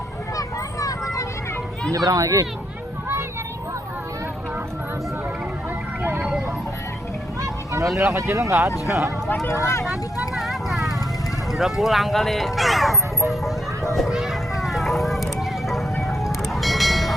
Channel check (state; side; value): normal; both; correlation 0.77